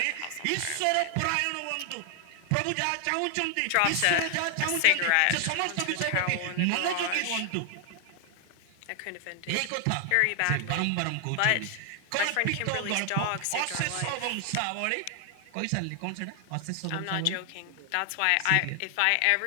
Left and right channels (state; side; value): different; both; correlation 0.00